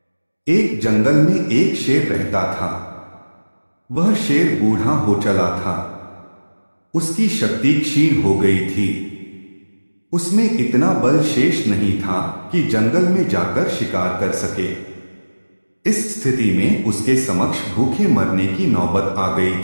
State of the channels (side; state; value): both; inverted; correlation -1.00